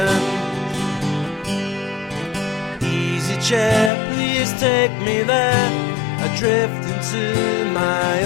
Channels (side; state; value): right; drops out; at 3.9 s